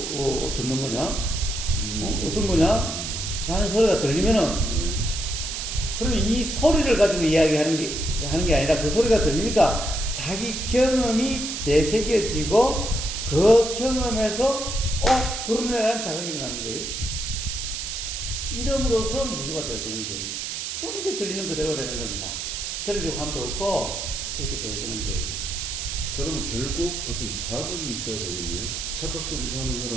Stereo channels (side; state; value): right; noise; hiss, 5 dB below the sound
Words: 듣는 거냐? 어떤 거냐? 라는 소리가 들리면은 그러면 이 소리를 가지고 이야기하는 게 아니라 그 소리가 들리니까 자기 경험이 되새겨지고 그 경험에서 그러네라는 자각이 일어나는 거예요. 이름으로써 무주가 되어지는 거예요. 그럼 이제 들리는 그대로 되는 겁니다. 들으려고 함도 없고 이렇게 되어지는 거예요. 그러면 결국 어떤 자극이 있어야 되겠네요. 착각 속에 사는